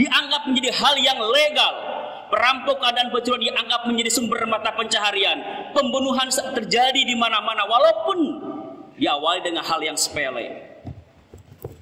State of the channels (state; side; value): identical; both; correlation 1.00